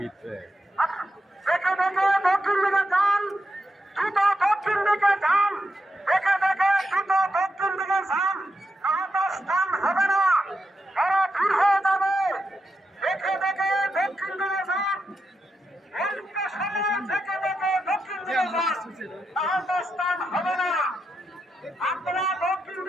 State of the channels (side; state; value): both; normal; correlation 0.86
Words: দেখে দেখে দক্ষিণ দিকে যান, দ্রুত দক্ষিণ দিকে যান, দেখে দেখে দ্রুত দক্ষিণ দিকে যান, নাহলে স্থান হবে না, তারা ভিড় হয়ে যাবে। দেখে দেখে দক্ষিণ দিকে যান, অল্প সময় দেখে দেখে দক্ষিণ দিকে যান, নাহলে স্থান হবে না। আপনারা দক্ষিণ